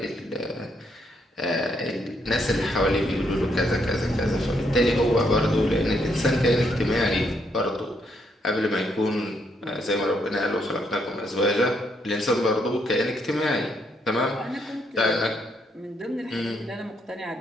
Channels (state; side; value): normal; both; correlation 0.74